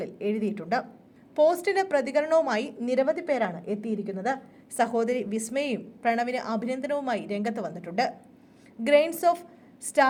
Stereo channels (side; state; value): both; identical; correlation 1.00